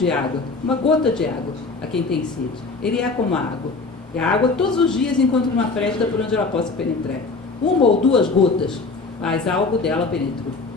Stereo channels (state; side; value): quieter; right; 4.0 dB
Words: água, uma gota de água a quem tem sede. Ele é como a água. E a água todos os dias encontra uma fresta por onde ela possa penetrar. Uma ou duas gotas, mas algo dela penetrou.